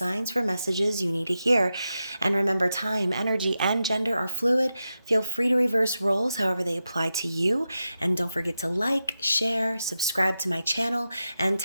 for messages you need to hear. And remember, time, energy, and gender are fluid. Feel free to reverse roles however they apply to you, and don't forget to like, share, subscribe to my channel, and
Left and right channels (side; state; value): both; inverted; correlation -0.90